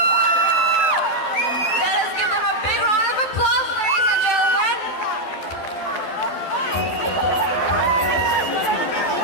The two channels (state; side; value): late; right; 12 ms